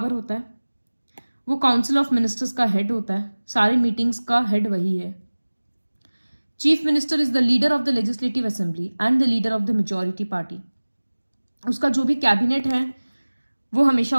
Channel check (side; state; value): both; inverted; correlation -1.00